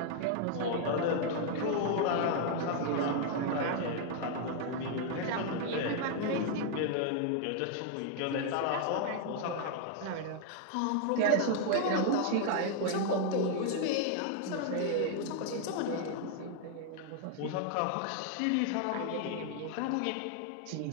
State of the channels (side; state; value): both; different; correlation 0.00